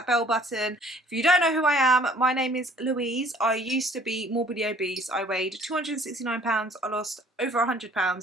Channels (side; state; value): both; normal; correlation 0.55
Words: bell button. If you don't know who I am, my name is Louise. I used to be morbidly obese. I weighed 269 pounds. I lost over 100